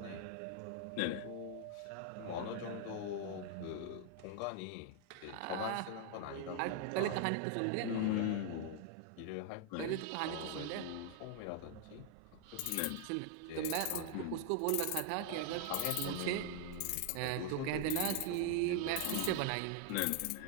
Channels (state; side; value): different; both; correlation 0.00